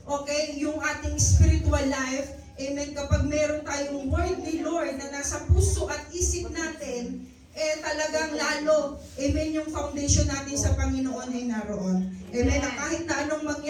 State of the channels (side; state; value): both; identical; correlation 1.00